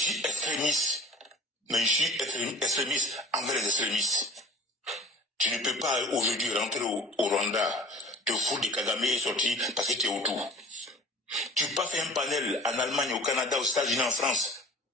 suis extrémiste. Mais je suis extrémiste envers les extrémistes. Tu ne peux pas aujourd'hui rentrer au Rwanda, te foutre de Kagame et sortir parce que tu es autour. Tu peux pas faire un panel en Allemagne, au Canada, aux États-Unis, en France.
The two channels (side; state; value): both; normal; correlation 0.43